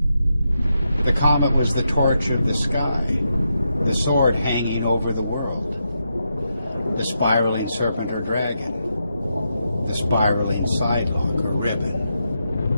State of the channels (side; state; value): both; inverted; correlation -0.84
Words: The comet was the torch of the sky, the sword hanging over the world, the spiraling serpent or dragon, the spiraling sidelock or ribbon.